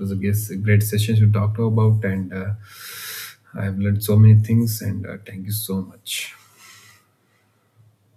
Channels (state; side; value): identical; both; correlation 1.00